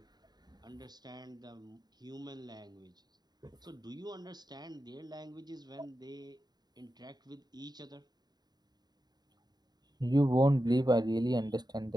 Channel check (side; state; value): left; late; 0.20 ms